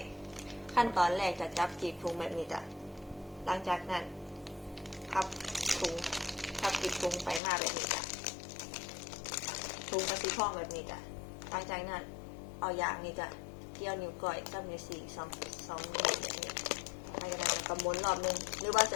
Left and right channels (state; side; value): drops out; right; at 7.4 s